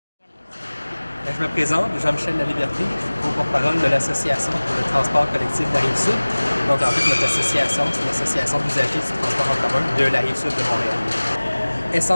Je me présente, Jean-Michel Laliberté, je suis co-porte-parole de l'Association pour le transport collectif de la Rive-Sud. Donc en fait, notre association, c'est l'association d'usagers du transport en commun de la Rive-Sud de Montréal.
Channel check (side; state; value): both; inverted; correlation -1.00